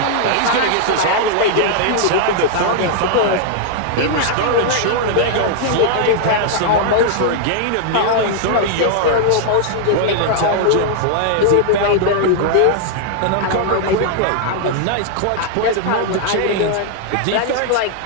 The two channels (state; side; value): different; both; correlation -0.01